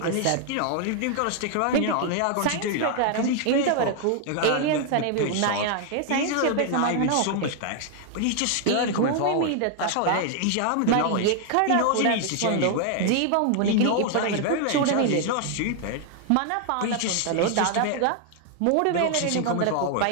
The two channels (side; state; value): both; different; correlation 0.00